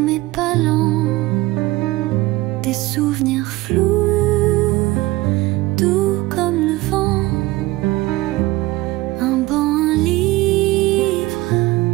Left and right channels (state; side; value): quieter; left; 19.2 dB